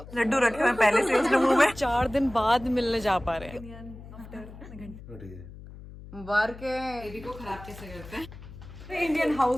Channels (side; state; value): left; noise; hum, 16 dB below the sound